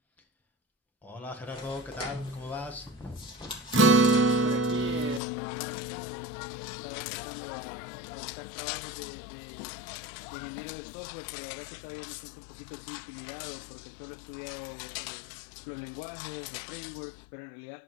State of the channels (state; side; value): drops out; right; at 5.2 s